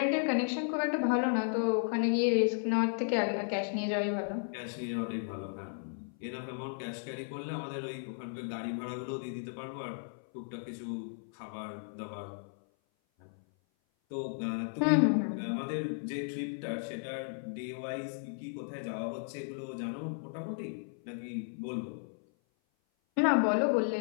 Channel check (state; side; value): silent; right; 55 dB below the other